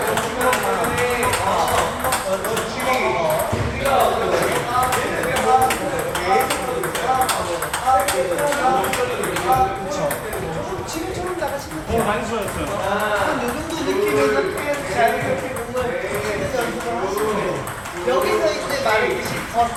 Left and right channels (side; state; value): both; identical; correlation 1.00